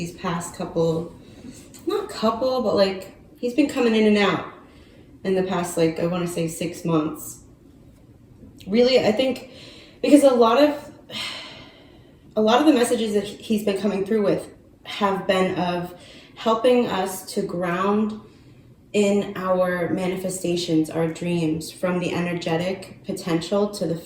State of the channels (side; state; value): both; identical; correlation 1.00